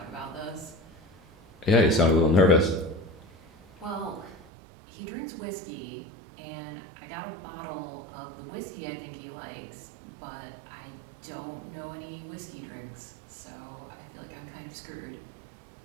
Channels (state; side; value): drops out; left; at 4.4 s